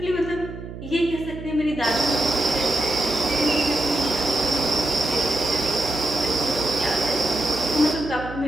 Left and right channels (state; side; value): noise; right; hum, 11 dB below the sound